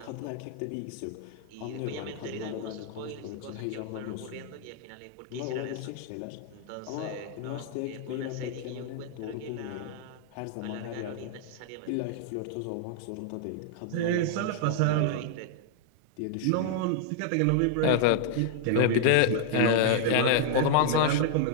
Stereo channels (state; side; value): different; both; correlation 0.00